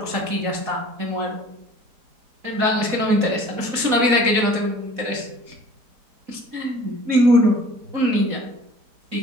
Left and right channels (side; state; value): left; late; 4.1 ms